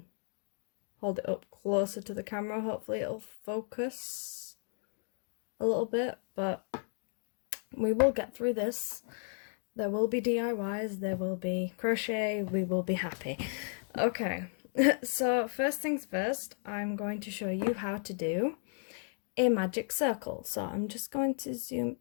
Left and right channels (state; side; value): silent; right; 55 dB below the other